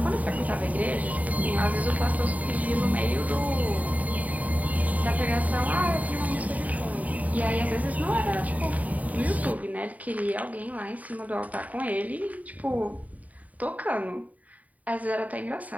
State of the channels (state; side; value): late; left; 0.073 ms